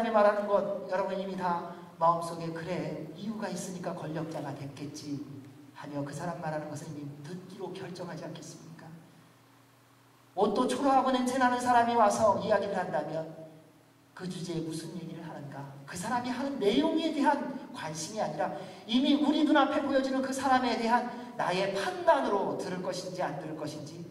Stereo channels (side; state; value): both; identical; correlation 1.00